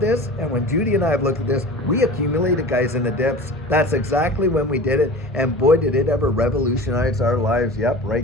this, and when Judy and I have looked at this, we accumulated, guys, in the dips. That's exactly when we did it. And boy, did it ever revolutionize our lives. Yep,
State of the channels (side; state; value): both; normal; correlation 0.37